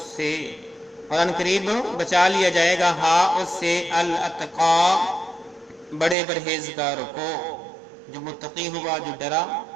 और अनकरीब बचा लिया जाएगा हा उससे, अल अतका, बड़े परहेजगार को, जो मुत्तकी हुआ, जो डरा।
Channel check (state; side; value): drops out; left; at 6.2 s